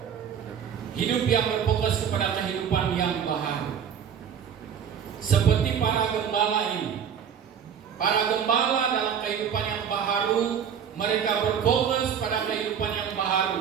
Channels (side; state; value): left; quieter; 8.0 dB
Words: Hidup yang berfokus kepada kehidupan yang baharu. Seperti para gembala ini. Para gembala dalam kehidupan yang baharu, mereka berfokus pada kehidupan yang